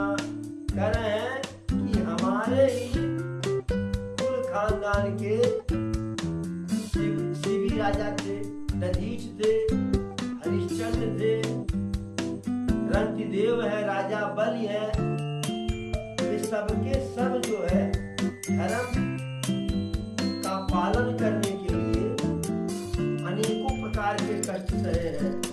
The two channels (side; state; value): both; identical; correlation 1.00